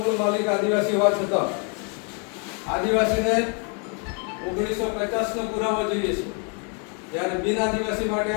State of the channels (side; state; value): right; quieter; 38.6 dB